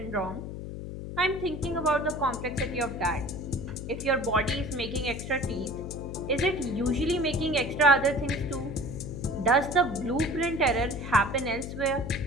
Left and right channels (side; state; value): left; noise; hum, 8 dB below the sound